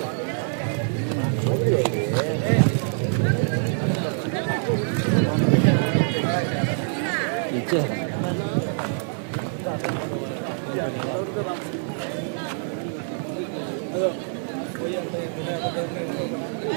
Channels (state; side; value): silent; left; digital silence